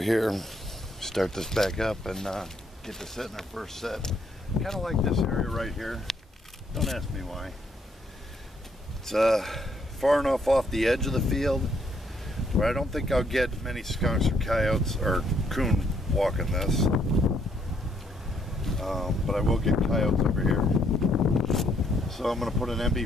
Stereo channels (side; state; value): both; normal; correlation 0.70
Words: Start this back up and get to set in our first set. Kind of like this area right here. Don't ask me why. It's far enough off the edge of the field where I don't think I'll get many skunks or coyotes or coon walking this. But I will get coyotes over here. So I'm going to put an